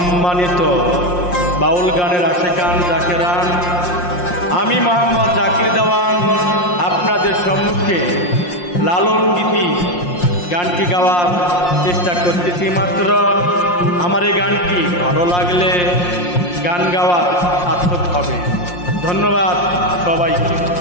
বাউল গানের আশেকান জাকেরান, আমি মোহাম্মদ জাকির দেওয়ান আপনাদের সম্মুখে লালন গীতি গানটি গাওয়ার চেষ্টা করতেছি। মাত্র আমার এই গানটি ভালো লাগলে গান গাওয়া সার্থক হবে। ধন্যবাদ সবাইকে।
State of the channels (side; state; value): right; late; 5.6 ms